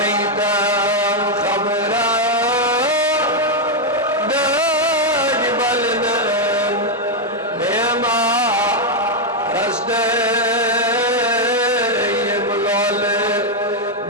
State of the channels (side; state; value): both; normal; correlation 0.01